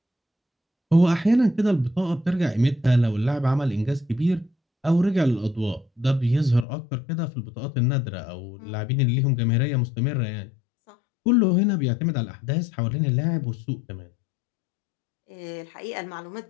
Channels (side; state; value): right; drops out; at 6.7 s